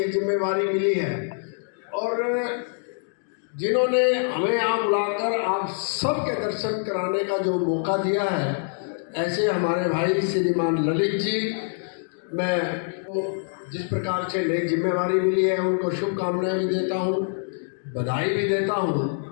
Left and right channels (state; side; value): silent; right; digital silence